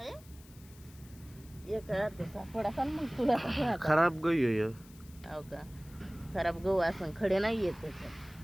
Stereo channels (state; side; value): noise; left; hiss, 24 dB below the sound